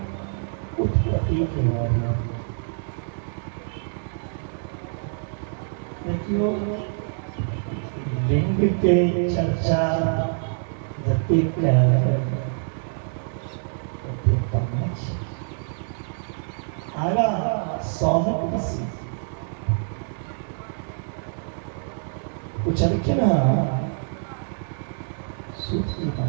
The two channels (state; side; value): silent; left; 61 dB below the other